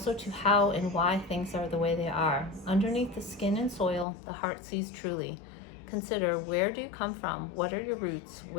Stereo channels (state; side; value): drops out; right; at 4.0 s